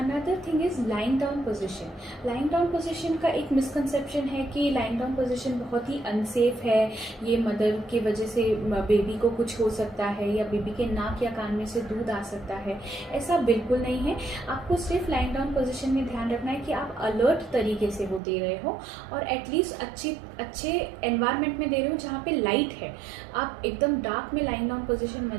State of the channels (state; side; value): drops out; left; at 18.2 s